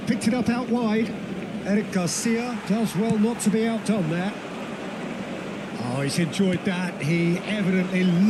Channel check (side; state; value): both; identical; correlation 1.00